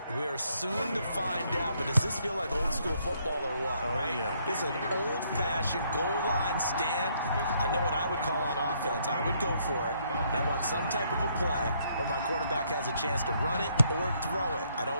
We are soon to find out, but does this feel like old school football or what? Oh, right? yeah. This is an old-fashioned goal line stand. I know what I would call on offense. I would go for it. And I want some type of a play where my quarterback has a chance to run it or throw it. I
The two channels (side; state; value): both; inverted; correlation -0.70